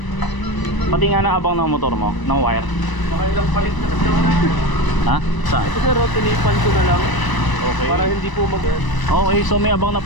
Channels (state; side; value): late; right; 1.0 ms